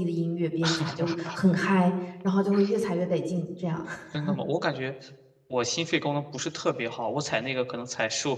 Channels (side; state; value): both; identical; correlation 1.00